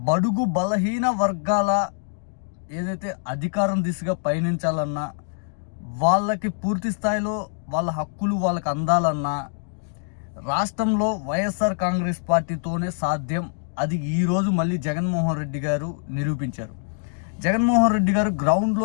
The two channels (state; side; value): silent; right; digital silence